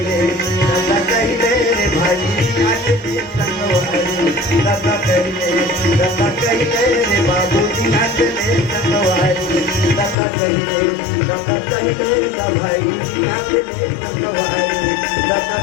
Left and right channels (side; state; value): right; drops out; at 10.2 s